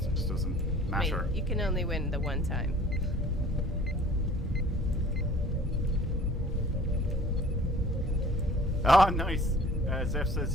doesn't I mean, matter. you can only win the one time. Oh, nice. Zeph says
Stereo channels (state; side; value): normal; both; correlation 0.50